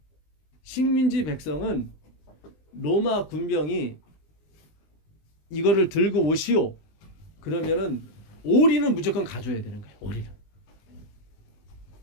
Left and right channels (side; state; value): right; late; 20 ms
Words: 식민지 백성은 로마 군병이 이거를 들고 오시오. 그러면은 오리는 무조건 가져야 되는 거예요. 오리는.